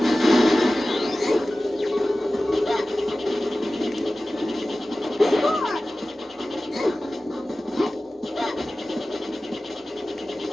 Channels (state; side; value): normal; both; correlation 0.96